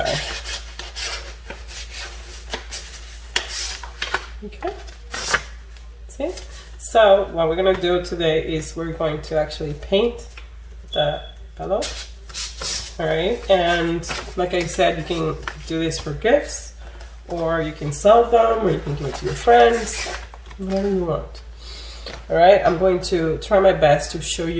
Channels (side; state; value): both; identical; correlation 1.00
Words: Okay, see? So what we're gonna do today is we're going to actually paint the envelope. All right, and like I said, you can do this for gifts, or you can sell them, or you can give it to your friends, whatever you want. All right, I'm going to try my best to show